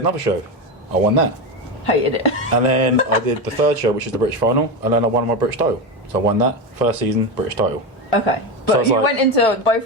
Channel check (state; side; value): normal; both; correlation 0.16